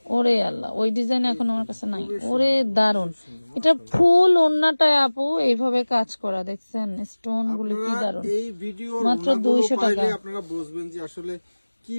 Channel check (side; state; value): both; inverted; correlation -1.00